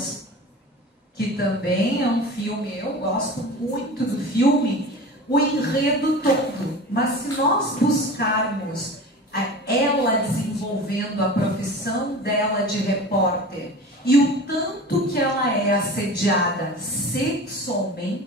que também é um filme, eu gosto muito do filme, o enredo todo. Mas se nós buscarmos ela desenvolvendo a profissão dela de repórter e o tanto que ela é assediada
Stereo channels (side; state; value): both; normal; correlation 0.35